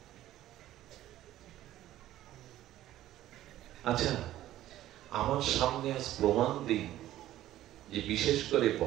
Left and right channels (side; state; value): left; quieter; 13.8 dB